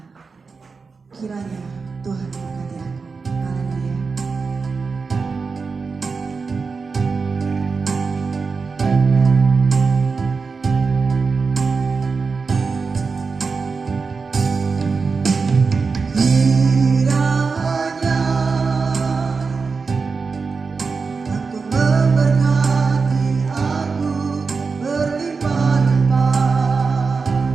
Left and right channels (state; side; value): quieter; left; 4.7 dB